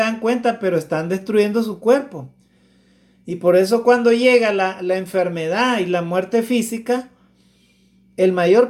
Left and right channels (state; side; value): identical; both; correlation 1.00